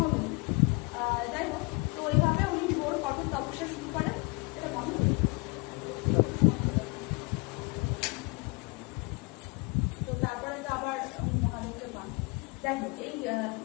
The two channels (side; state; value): right; quieter; 29.9 dB